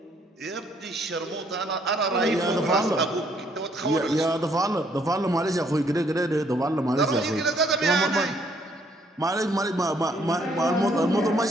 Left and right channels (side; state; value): both; normal; correlation 0.67